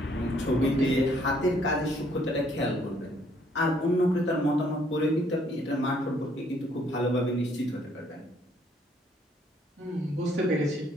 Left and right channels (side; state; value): both; normal; correlation 0.66